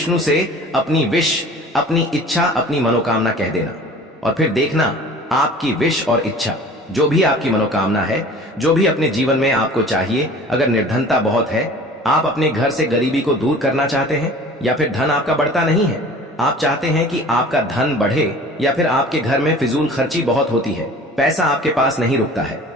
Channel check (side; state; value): both; normal; correlation 0.44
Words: से अपनी विश, अपनी इच्छा, अपनी मनोकामना कह देना और फिर देखना आपकी विश और इच्छा, जो भी आपकी मनोकामना है, जो भी अपने जीवन में आपको चाहिए। अगर निर्धनता बहुत है, आप अपने घर से गरीबी को दूर करना चाहते हैं, या फिर धन आपका बढ़ता नहीं है, आप चाहते हैं कि आपका धन बढ़े, या फिर आपके घर में फिजूल खर्ची बहुत होती है, पैसा आपके पास नहीं रुकता है,